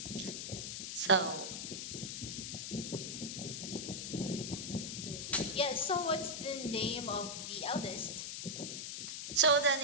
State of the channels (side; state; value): left; noise; hiss, 5 dB below the sound